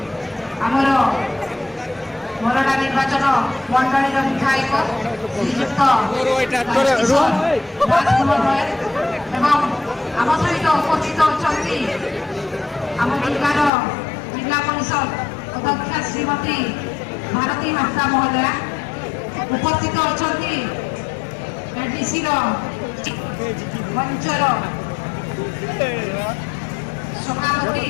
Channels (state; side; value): drops out; right; at 13.7 s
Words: ଆମର ମୋରଡ଼ା ନିର୍ବାଚନ ମଣ୍ଡଳୀର ବିଧାୟକ ଶ୍ରୀଯୁକ୍ତ ରାଜକୁମାର ଏବଂ ଆମ ସହିତ ଉପସ୍ଥିତ ଅଛନ୍ତି ଆମ ଜିଲ୍ଲାର ଜିଲ୍ଲା ପରିଷଦ ଅଧ୍ୟକ୍ଷା ଶ୍ରୀମତୀ ଭାରତୀ ହାଁସଦା ମହୋଦୟା ଉପସ୍ଥିତ ଅଛନ୍ତି ଏଡିସିର ମଞ୍ଚର ସଭାପତି